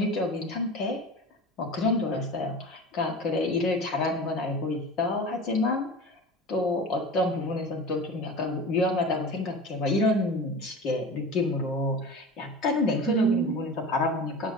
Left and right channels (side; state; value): both; normal; correlation 0.33